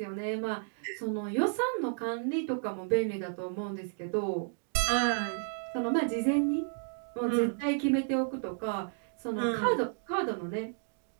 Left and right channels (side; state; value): left; silent; digital silence